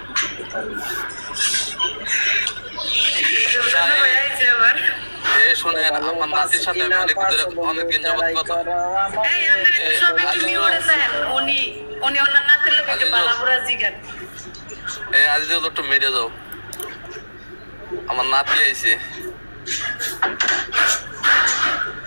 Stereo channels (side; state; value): both; inverted; correlation -1.00